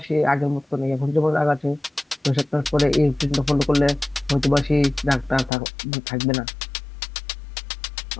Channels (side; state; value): right; drops out; at 5.5 s